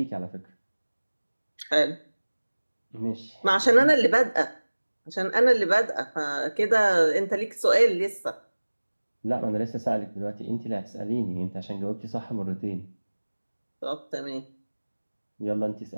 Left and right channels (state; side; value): inverted; both; correlation -1.00